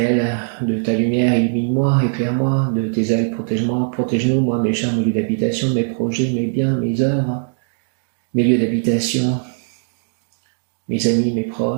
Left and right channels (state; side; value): silent; left; digital silence